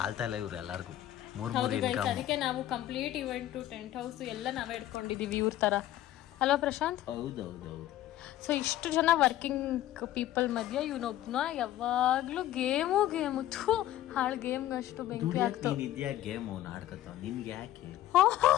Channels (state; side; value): quieter; right; 13.5 dB